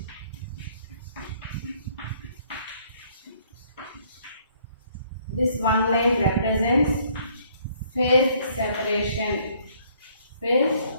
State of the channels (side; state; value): both; inverted; correlation -0.63